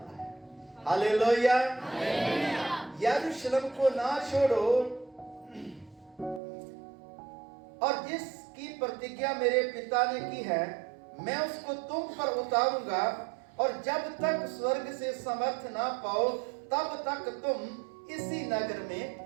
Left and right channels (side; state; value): left; drops out; at 6.4 s